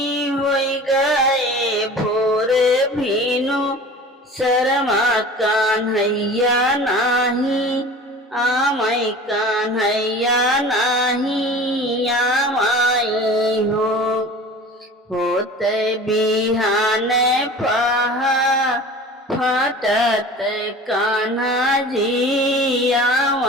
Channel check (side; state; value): both; normal; correlation 0.40